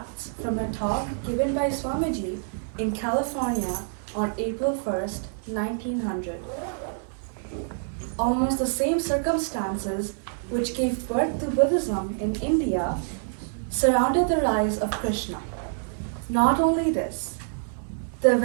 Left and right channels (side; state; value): left; silent; digital silence